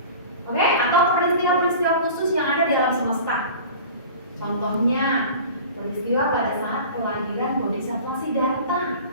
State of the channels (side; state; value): both; inverted; correlation -0.39